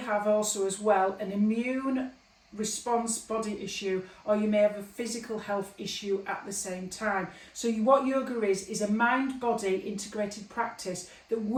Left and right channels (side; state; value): both; identical; correlation 1.00